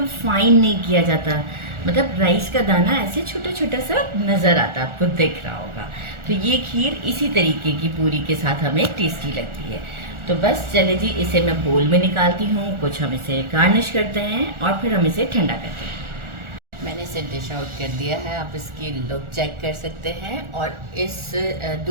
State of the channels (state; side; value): late; left; 1.4 ms